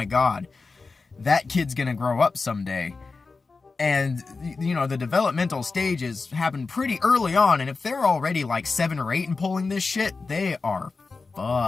God, that kid's gonna grow up someday. And, you know, the developmental stages happen pretty early on, and if they're already like 7 or 8 and pulling this shit, they are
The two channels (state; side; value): quieter; right; 4.1 dB